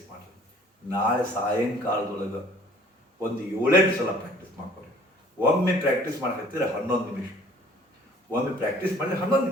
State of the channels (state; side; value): normal; both; correlation 0.54